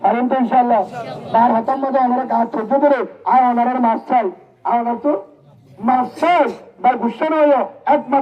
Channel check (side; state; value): both; identical; correlation 1.00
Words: পারেন তো ইনশাআল্লাহ তার হাতের মধ্যে আমরা কাজ করতে ধরে আর ওনার মাছ চাই আর ওনার তো মাছ চাই বা গুসা নয়